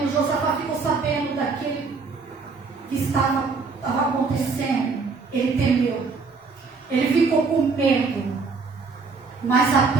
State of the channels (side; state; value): left; quieter; 4.5 dB